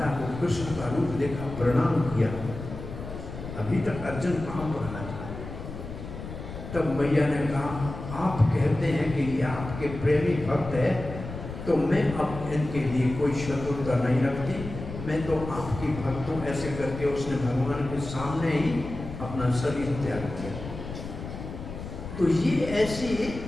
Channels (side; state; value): left; noise; rumble, 9 dB below the sound